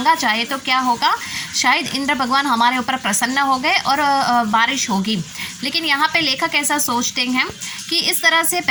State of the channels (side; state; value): both; identical; correlation 1.00